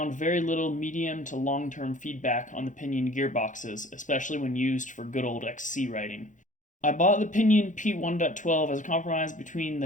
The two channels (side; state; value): right; late; 0.37 ms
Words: very little medium to long-term feedback on the Pinion gearboxes, especially when used for good old XC riding. I bought the Pinion P1.12 as a compromise between